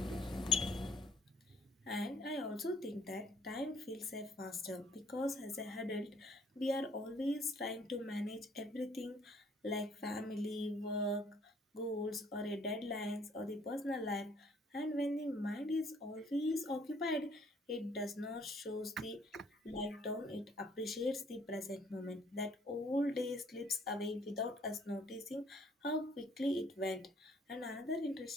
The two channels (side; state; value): both; normal; correlation 0.61